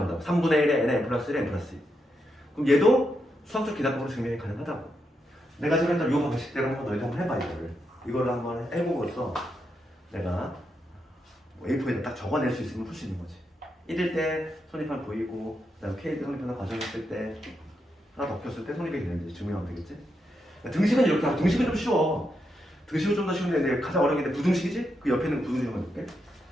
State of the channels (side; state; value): both; normal; correlation 0.83